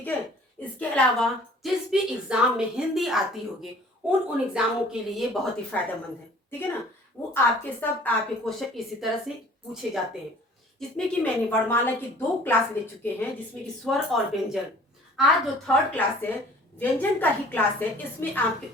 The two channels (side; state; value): both; normal; correlation 0.51